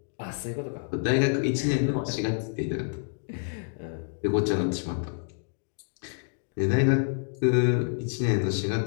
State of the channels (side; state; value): right; silent; digital silence